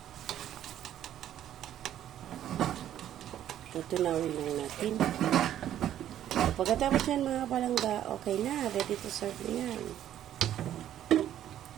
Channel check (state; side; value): quieter; left; 11.3 dB